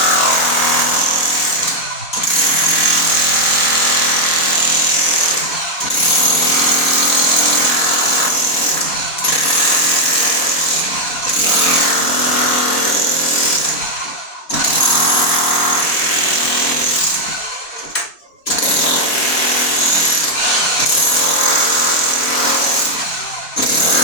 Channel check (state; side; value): late; right; 3.3 ms